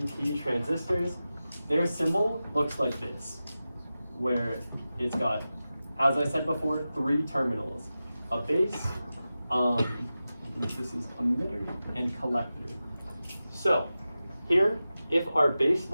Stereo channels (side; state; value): both; inverted; correlation -0.94